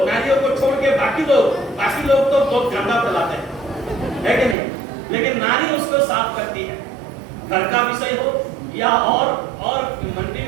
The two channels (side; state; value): left; drops out; at 4.5 s